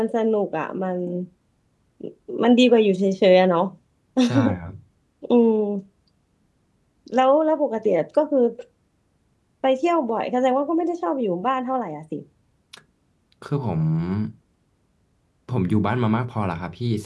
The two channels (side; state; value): both; identical; correlation 1.00